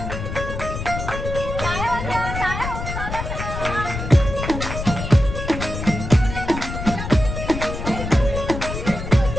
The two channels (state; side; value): noise; left; rumble, 6 dB below the sound